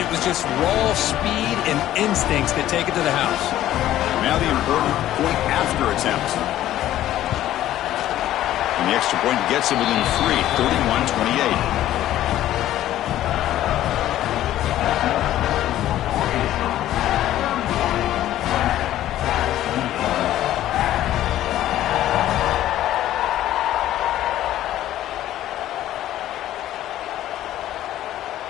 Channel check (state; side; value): quieter; right; 13.2 dB